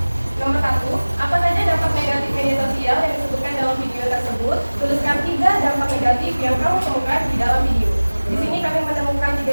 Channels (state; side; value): inverted; both; correlation -1.00